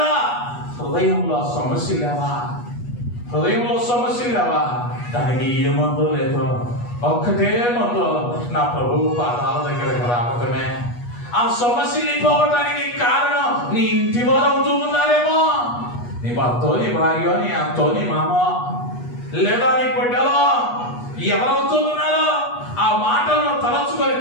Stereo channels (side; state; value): right; late; 8.3 ms